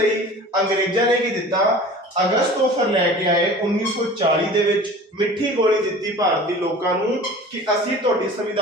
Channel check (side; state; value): both; normal; correlation 0.41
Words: ਅੰਗਰੇਜ਼ਾਂ ਨੇ ਕੀ ਦਿੱਤਾ, ਅਗਸਤ ਆਫਰ ਲੈ ਕੇ ਆਏ 1940 ਦੇ ਵਿੱਚ। ਮਿੱਠੀ ਗੋਲੀ ਦਿੱਤੀ ਭਾਰਤੀ ਲੋਕਾਂ ਨੂੰ ਕਿ ਅਸੀਂ ਤੁਹਾਡੀ